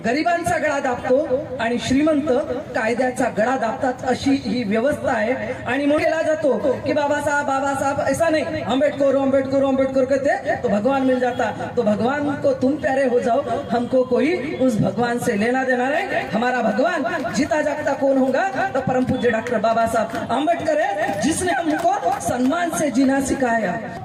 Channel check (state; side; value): identical; both; correlation 1.00